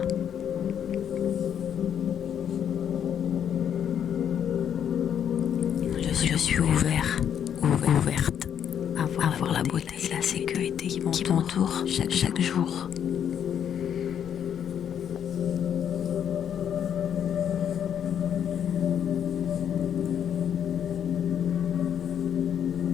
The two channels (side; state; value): right; quieter; 9.0 dB